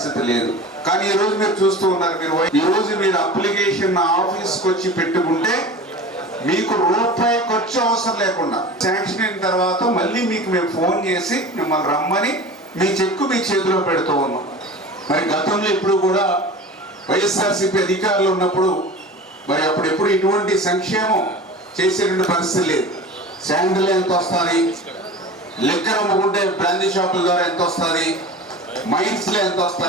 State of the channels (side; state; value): both; normal; correlation 0.36